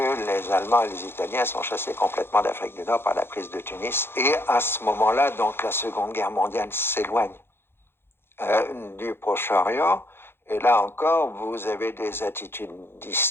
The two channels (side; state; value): right; late; 0.11 ms